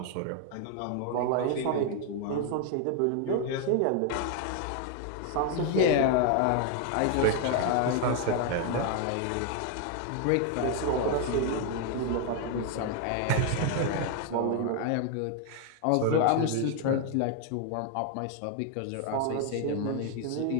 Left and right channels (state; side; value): different; both; correlation 0.00